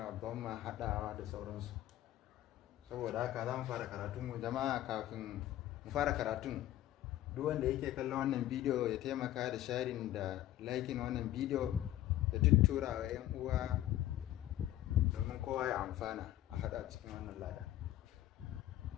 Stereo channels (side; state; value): right; quieter; 13.7 dB